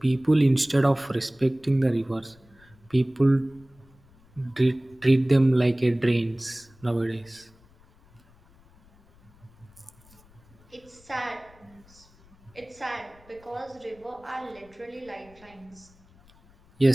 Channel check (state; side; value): noise; left; rumble, 28 dB below the sound